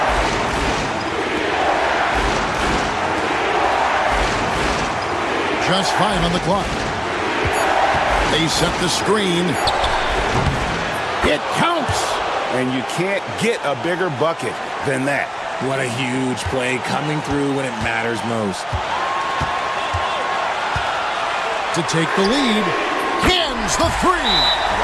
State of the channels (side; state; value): both; identical; correlation 1.00